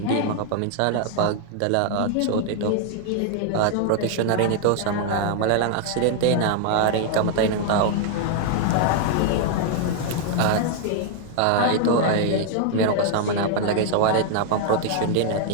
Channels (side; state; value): both; different; correlation 0.00